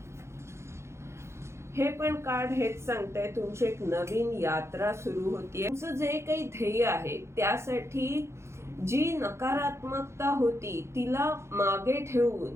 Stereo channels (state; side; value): late; left; 0.13 ms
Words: हे पण कार्ड हेच सांगतंय तुमची एक नवीन यात्रा सुरू होतीये. तुमचं जे काही ध्येय आहे त्यासाठी जी नकारात्मकता होती तिला मागे ठेवून